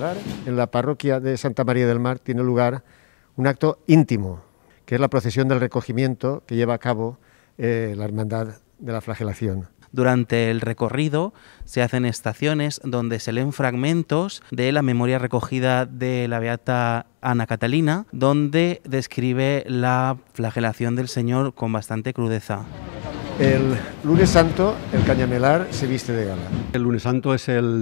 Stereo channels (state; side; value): silent; right; digital silence